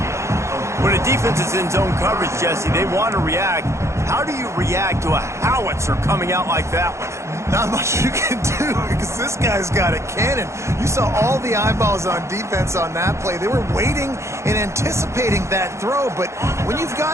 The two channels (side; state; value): left; late; 0.14 ms